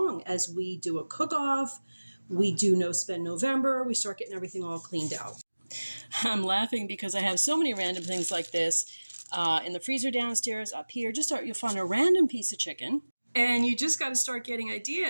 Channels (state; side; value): inverted; both; correlation -1.00